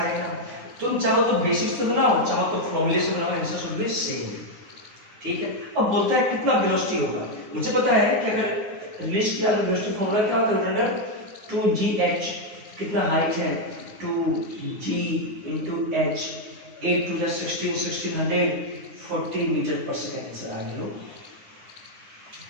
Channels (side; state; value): left; late; 9.6 ms